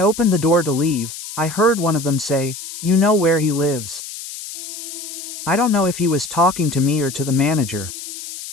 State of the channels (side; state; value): left; noise; hiss, 10 dB below the sound